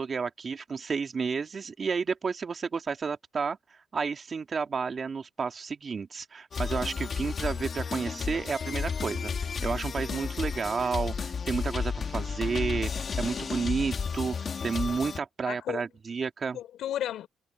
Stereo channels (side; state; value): both; normal; correlation 0.85